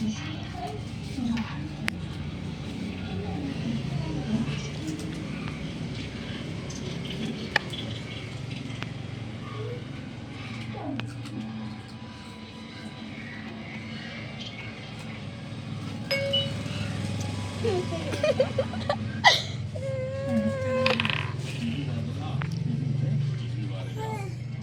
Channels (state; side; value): identical; both; correlation 1.00